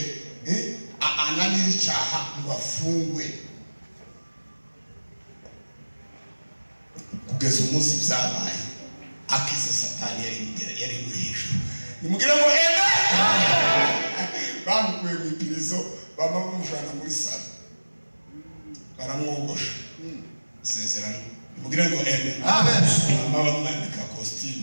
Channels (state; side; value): inverted; both; correlation -1.00